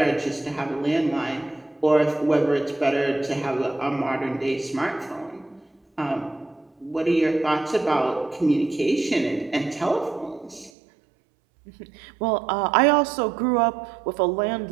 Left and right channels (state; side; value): drops out; left; at 10.7 s